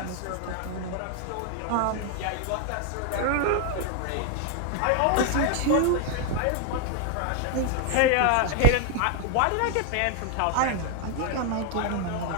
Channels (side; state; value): both; different; correlation 0.01